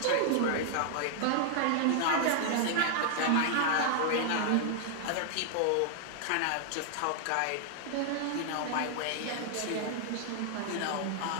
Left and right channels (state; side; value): different; both; correlation 0.00